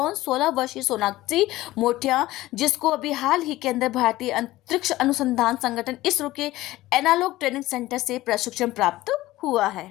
16 वर्षीय सोनाक्षी मोठिया, जिसको अभी हाल ही के अंदर भारतीय अंतरिक्ष अनुसंधान संगठन इसरो के एनालॉग ट्रेनिंग सेंटर से प्रशिक्षण प्राप्त हुआ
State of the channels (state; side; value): quieter; right; 17.0 dB